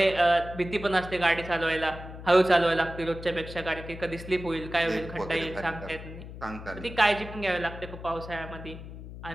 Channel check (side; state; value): left; noise; hum, 12 dB below the sound